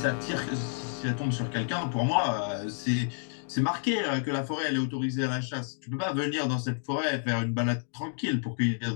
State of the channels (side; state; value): right; silent; digital silence